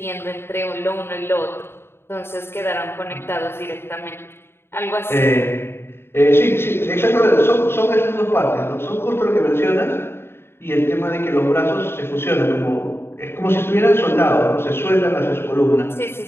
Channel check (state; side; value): late; right; 0.11 ms